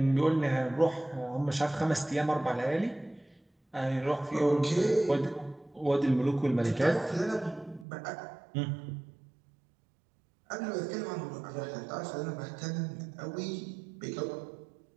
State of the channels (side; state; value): left; drops out; at 7.9 s